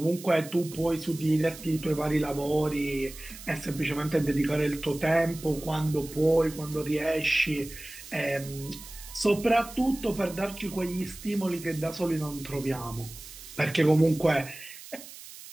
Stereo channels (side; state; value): right; noise; hiss, 15 dB below the sound